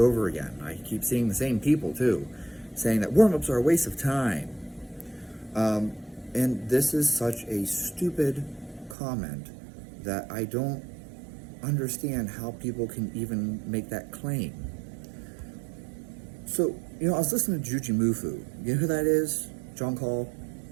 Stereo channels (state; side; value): drops out; left; at 9.0 s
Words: again. I keep seeing the same people too, saying that warm-ups are a waste of time. And this is such a stupid comment that I don't understand how people can even make that claim. So, you know, I was listening to Juji Mufu. You know who that is? John Call.